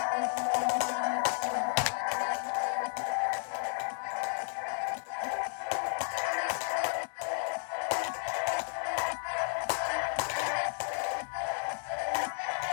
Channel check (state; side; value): silent; right; digital silence